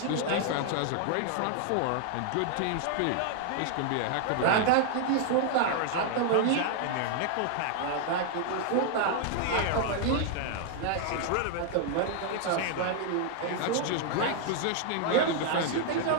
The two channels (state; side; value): different; both; correlation 0.00